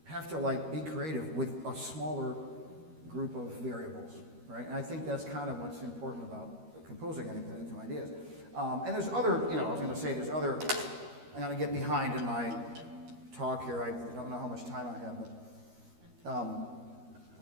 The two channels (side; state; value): left; late; 13 ms